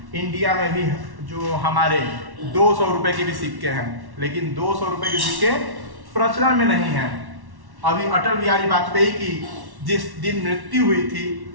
इंडिया में भी जो हमारे 200 रुपए के भी सिक्के हैं, लेकिन 200 रुपए के सिक्के प्रचलन में नहीं है। अभी अटल बिहारी वाजपेयी की जिस दिन मृत्यु हुई थी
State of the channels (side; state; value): left; late; 1.1 ms